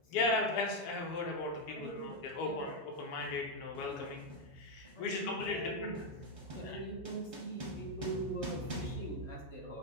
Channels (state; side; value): late; right; 4.7 ms